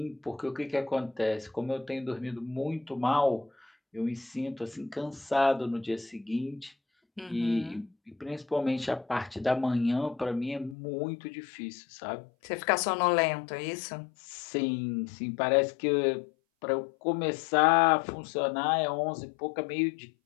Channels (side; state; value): right; drops out; at 10.8 s